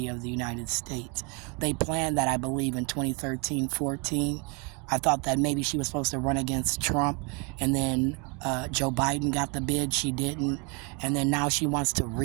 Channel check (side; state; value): left; quieter; 32.4 dB